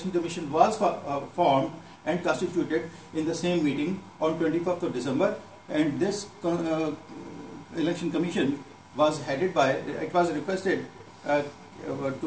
commission was formed and constituted in the same meeting on 25th of December, and this election commission was headed by, it was requested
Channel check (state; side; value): identical; both; correlation 1.00